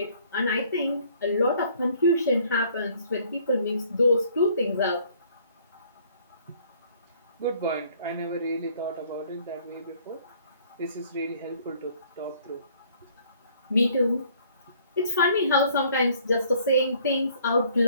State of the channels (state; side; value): inverted; both; correlation -0.59